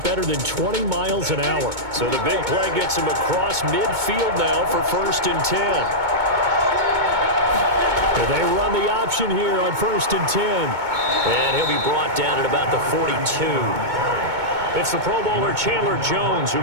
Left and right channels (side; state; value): left; late; 2.2 ms